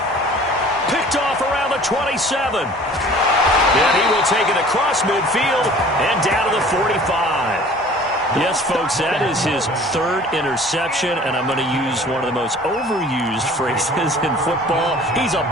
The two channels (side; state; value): both; normal; correlation 0.48